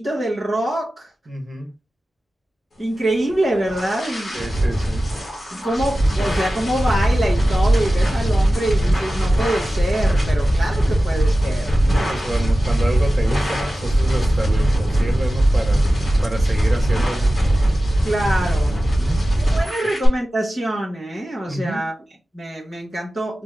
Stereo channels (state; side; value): normal; both; correlation 0.95